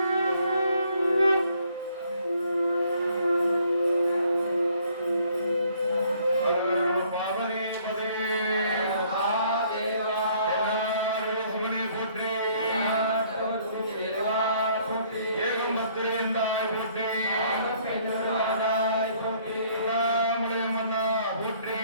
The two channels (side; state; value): both; inverted; correlation -0.62